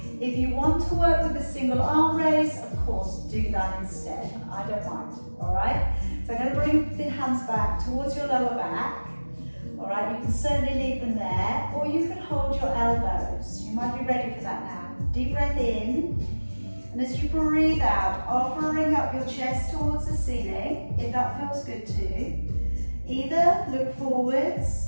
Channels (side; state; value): both; inverted; correlation -1.00